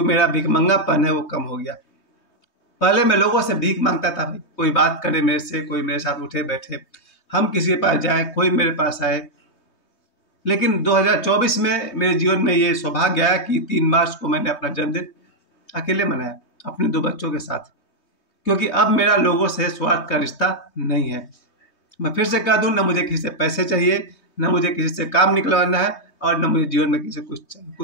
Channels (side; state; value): right; late; 3.2 ms